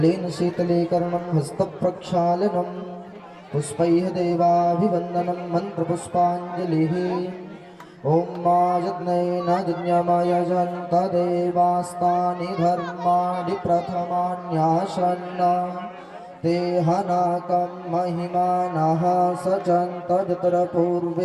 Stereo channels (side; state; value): both; identical; correlation 1.00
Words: शीतले कर्णं हस्तप्रक्षालनं पुष्पैः देवाभिवन्दनं मन्त्रपुष्पाञ्जलिः ॐ मा यज्ञेन यज्ञमाय जन्तदेवास्तानि धर्माणि प्रथमान्यासन्न ते हनाकं महिमानः सचन्त